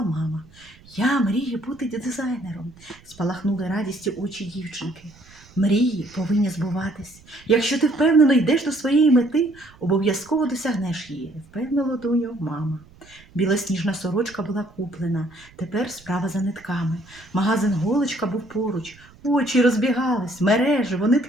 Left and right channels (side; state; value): right; noise; rumble, 25 dB below the sound